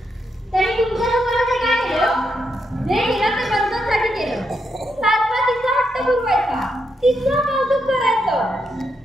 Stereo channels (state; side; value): normal; both; correlation 0.81